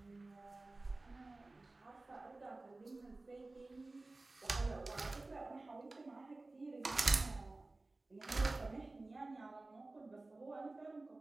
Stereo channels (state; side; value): quieter; left; 3.1 dB